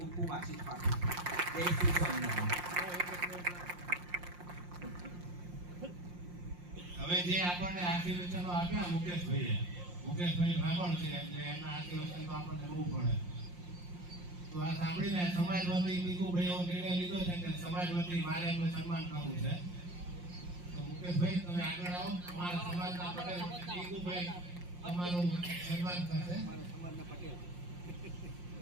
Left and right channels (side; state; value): left; late; 5.7 ms